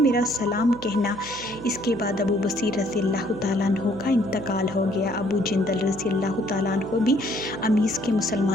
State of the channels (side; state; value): right; noise; hum, 15 dB below the sound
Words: سلام کہنا۔ اس کے بعد ابو بصیر رضی اللہ تعالیٰ عنہ کا انتقال ہو گیا۔ ابو جندل رضی اللہ تعالیٰ عنہ بھی امیس کے